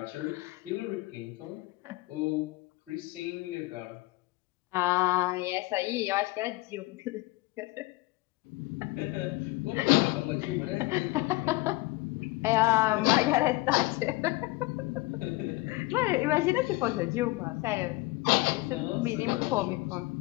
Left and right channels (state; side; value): quieter; right; 21.1 dB